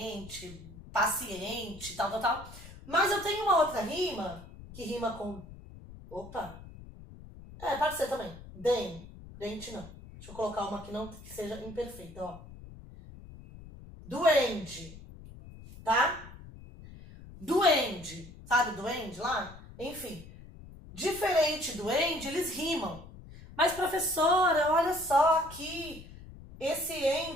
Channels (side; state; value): left; noise; rumble, 17 dB below the sound